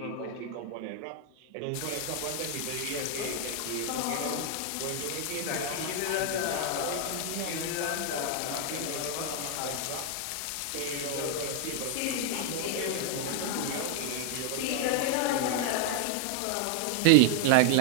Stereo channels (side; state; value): both; different; correlation 0.00